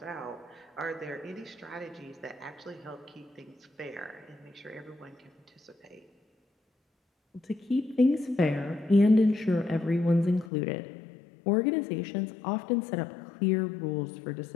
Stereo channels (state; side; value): drops out; right; at 10.5 s